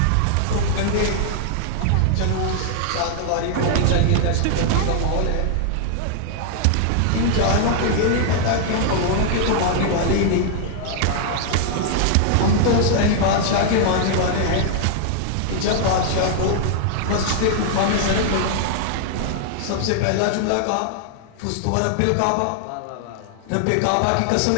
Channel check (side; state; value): both; different; correlation -0.01